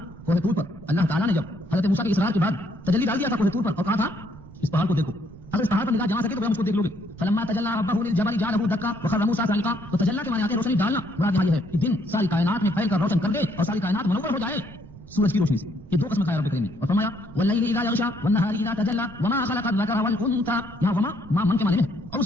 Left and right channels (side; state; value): right; noise; rumble, 20 dB below the sound